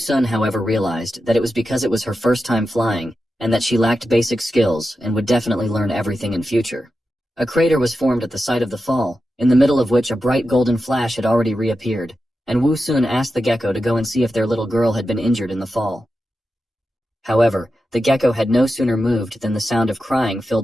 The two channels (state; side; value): normal; both; correlation 0.90